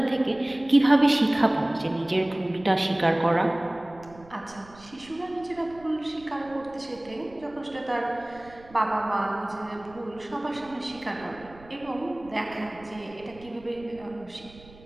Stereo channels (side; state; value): right; noise; rumble, 22 dB below the sound